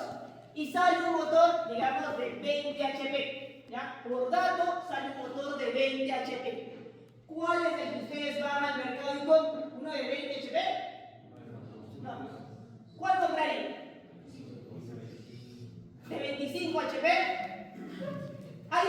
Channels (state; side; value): identical; both; correlation 1.00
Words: y sale un motor, digamos, de 20 HP, ¿ya? Por dato sale un motor de 20 HP. ¿Cuál es el que ustedes van al mercado y compran? ¿Uno de 20 HP? No. ¿Cuál comprarían? ¿De 25 HP? ¿Hay